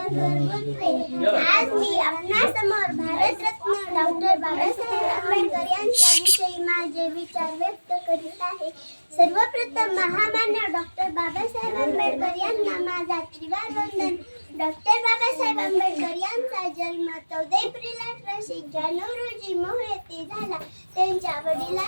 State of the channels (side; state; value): both; inverted; correlation -1.00